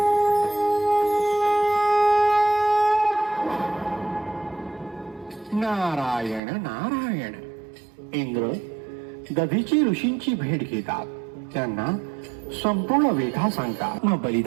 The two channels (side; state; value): left; drops out; at 6.4 s